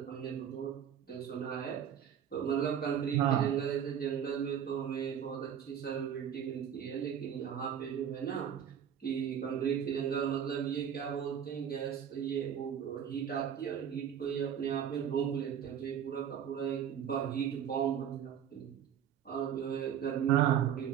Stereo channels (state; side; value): quieter; left; 8.9 dB